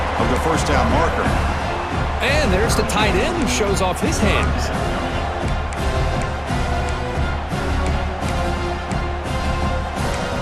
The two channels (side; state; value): both; identical; correlation 1.00